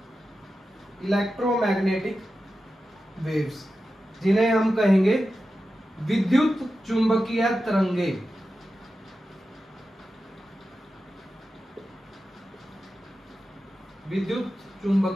इलेक्ट्रोमैग्नेटिक वेव्स जिन्हें हम कहेंगे विद्युत चुंबकीय तरंगे। विद्युत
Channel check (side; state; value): both; normal; correlation 0.92